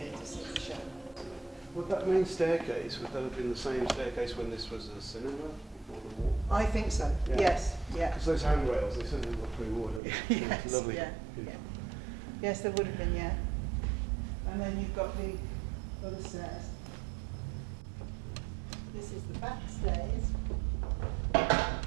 to see the show. Would that main staircase, would that have been the same staircase when this was a cinema before the war? I think so. Yeah. Yes. Yeah. Because those handrails, they certainly look pre-war, don't they? Yes. It's lovely. Yeah. Yeah. Yes, there would have been. Yeah. And then you've got the other stairs. This is the back stairs.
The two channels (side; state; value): left; drops out; at 10.0 s